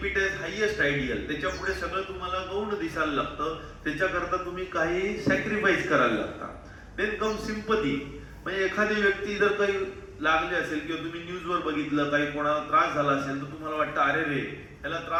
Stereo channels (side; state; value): both; identical; correlation 1.00